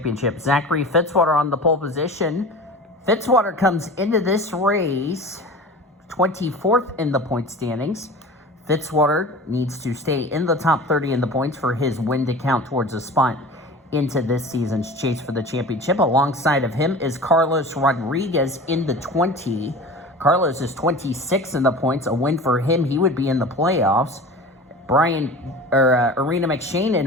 Zachary Fitzwater on the pole position. Fitzwater comes into this race 24th in the point standings. Fitzwater needs to stay in the top 30 in the points for his win to count towards a spot into this season's chase for the championship. Alongside of him is Carlos Rodriguez in the 20. Carlos is 26 in the points. A win for him, he would be in the playoffs. Arena McShane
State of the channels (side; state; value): both; normal; correlation 0.36